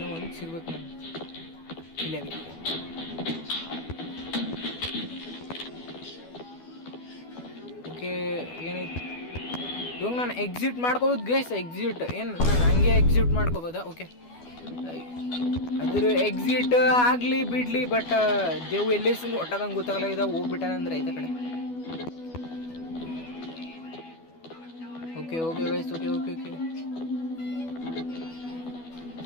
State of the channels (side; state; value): right; late; 12 ms